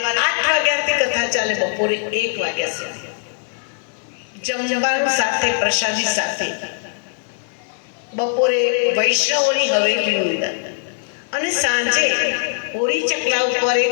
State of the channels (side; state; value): right; silent; digital silence